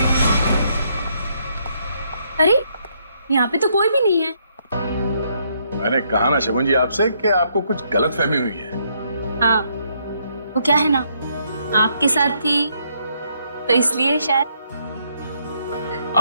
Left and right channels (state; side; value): inverted; both; correlation -0.72